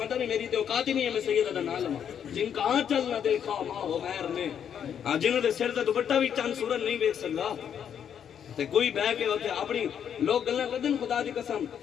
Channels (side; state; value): right; quieter; 8.5 dB